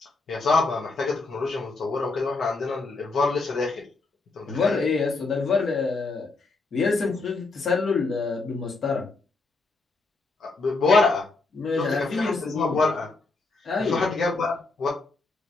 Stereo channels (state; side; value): quieter; right; 3.7 dB